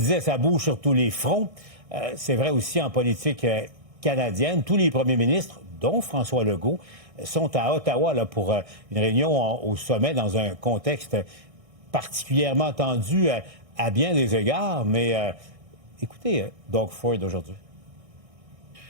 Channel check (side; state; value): left; late; 1.6 ms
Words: ça bouge sur tous les fronts. C'est vrai aussi en politique canadienne. Tous les premiers ministres, dont François Legault, sont à Ottawa là, pour une réunion au sommet dans un contexte particulièrement tendu à bien des égards. Mais écoutez, Doug Ford aujourd'hui.